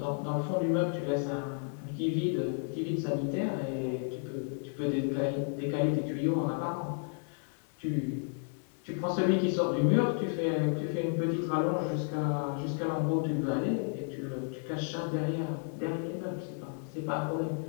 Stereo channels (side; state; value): right; silent; 56 dB below the other